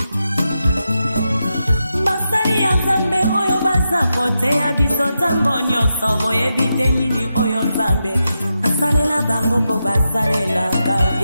Basali ya Nzambe oyo baza koteya biso ntango nyonso boyebi te nini oyo Nzambe asalela bango mpo basalelaka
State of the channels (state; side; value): inverted; both; correlation -0.88